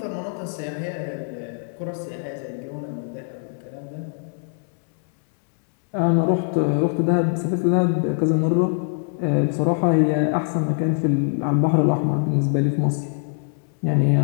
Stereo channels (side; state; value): right; silent; 63 dB below the other